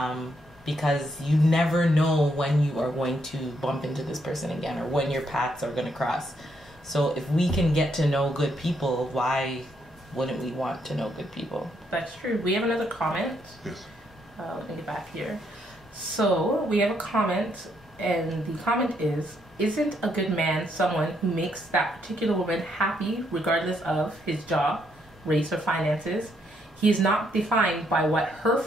Because you never know when you are going to bump into this person again, or when your paths are going to cross. So if we can get to know good people, why wouldn't we want to know good people? That's true. We have another comment. Yes. Let me get back here. So we have a comment, and the comment is, isn't a good man someone who makes that particular woman happy regardless of his job, race, or finances? He is not defined by what her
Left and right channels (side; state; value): both; normal; correlation 0.74